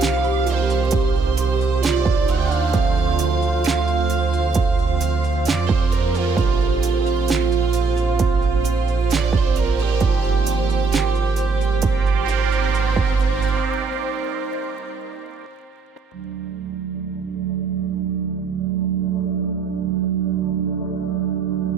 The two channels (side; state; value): left; quieter; 4.1 dB